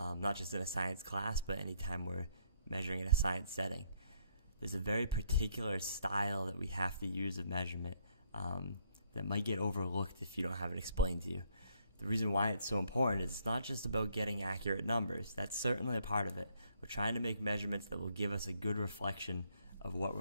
just in a science class, but anytime we're measuring in a science setting. There's a very particular style that we have to use of measurement that might get overlooked if you don't have it explained to you. The reason why it's so important is it's not just about getting accurate numbers. That's certainly a part of it. We're trying to make measurements that will give us a good reflection of what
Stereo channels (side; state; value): both; inverted; correlation -0.69